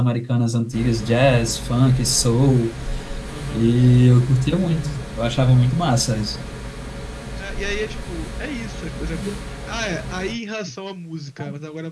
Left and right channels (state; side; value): identical; both; correlation 1.00